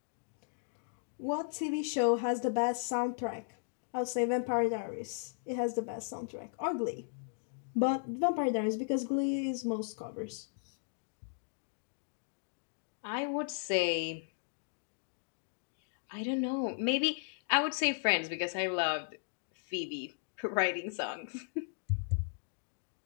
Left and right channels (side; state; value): right; silent; digital silence